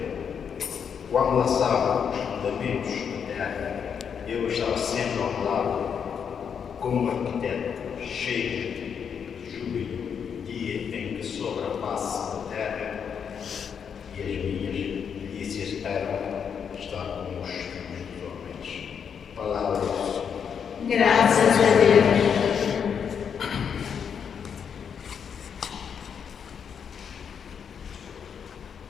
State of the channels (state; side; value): quieter; right; 7.2 dB